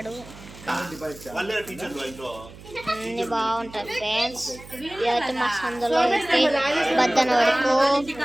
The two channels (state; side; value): noise; right; hum, 18 dB below the sound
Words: అన్ని బాగుంటాయి ఫ్రెండ్స్. ఇదైతే మా సందులో బద్దన వరకు